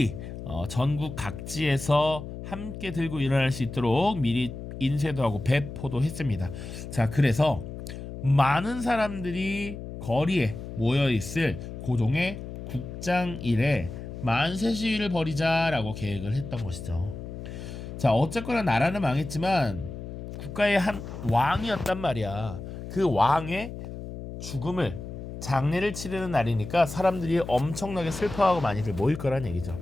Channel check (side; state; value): left; noise; hum, 9 dB below the sound